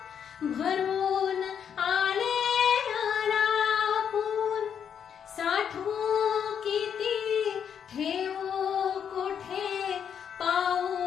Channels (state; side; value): quieter; right; 8.0 dB